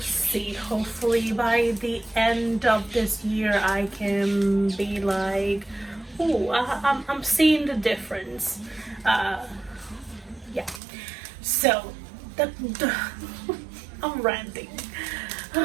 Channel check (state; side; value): drops out; left; at 10.8 s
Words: Hopefully by the end of this year I can be like, oh, I'm seeing the difference. Yeah. So I'm ranting.